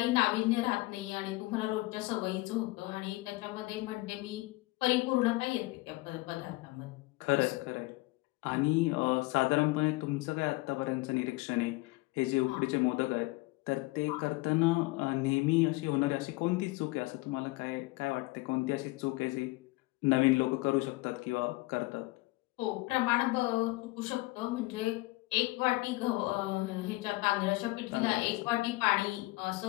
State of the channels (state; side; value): quieter; right; 22.0 dB